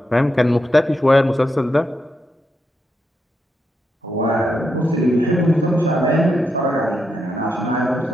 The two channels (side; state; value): both; normal; correlation 0.83